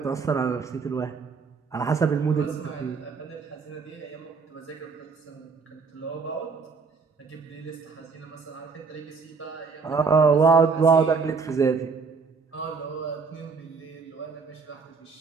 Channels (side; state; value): left; quieter; 5.0 dB